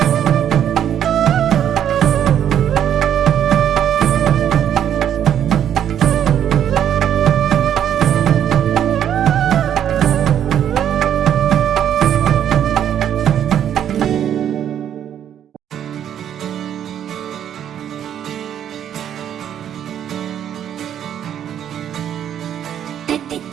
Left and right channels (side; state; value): left; quieter; 9.8 dB